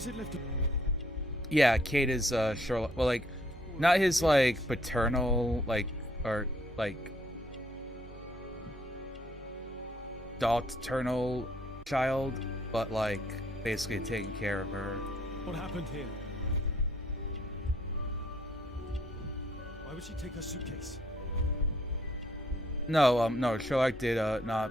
it left? Yeah, Kate is Sherlock. Well, like, not his like paternal, like, or like paternal child, but like basically taking care of her. What happened here? Why would she take her suitcase? No, no, Sherlock did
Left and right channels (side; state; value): both; normal; correlation 0.66